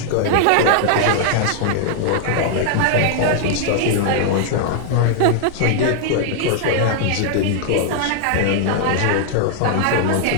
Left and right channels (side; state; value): both; different; correlation -0.01